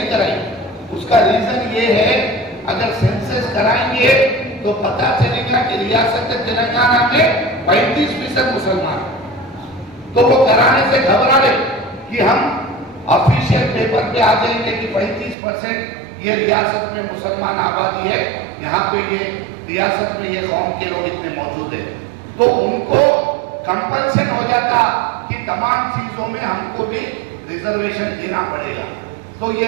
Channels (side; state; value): left; drops out; at 15.4 s